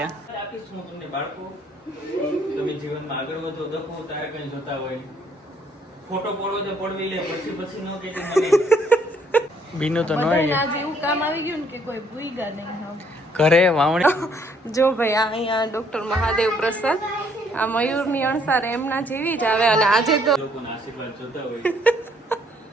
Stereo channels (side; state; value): both; normal; correlation 0.66